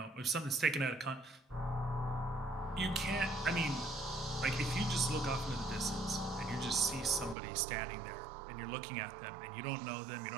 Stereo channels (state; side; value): drops out; left; at 7.4 s